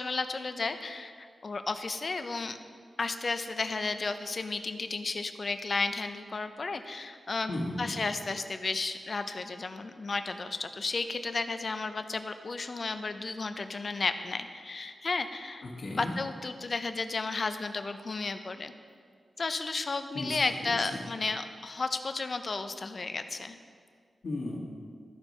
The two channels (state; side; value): quieter; right; 3.2 dB